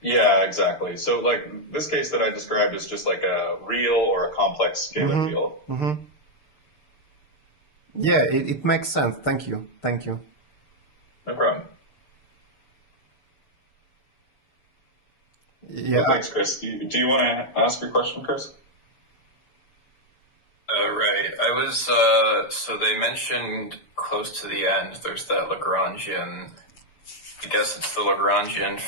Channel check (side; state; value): right; late; 6.6 ms